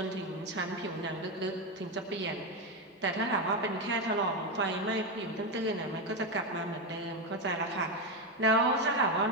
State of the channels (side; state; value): both; normal; correlation 0.10